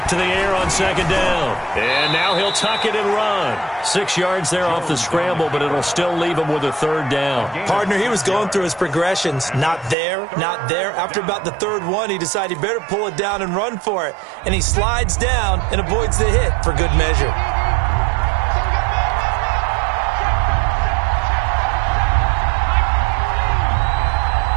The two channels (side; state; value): left; drops out; at 10.0 s